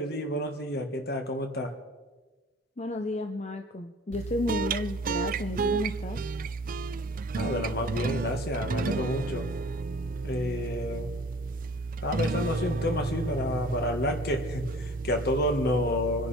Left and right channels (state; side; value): normal; both; correlation 0.48